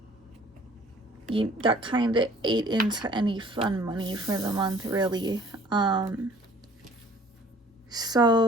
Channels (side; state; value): both; normal; correlation 0.53